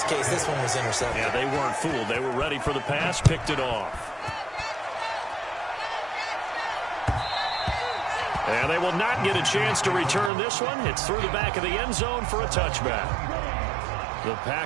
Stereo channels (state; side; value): drops out; left; at 10.3 s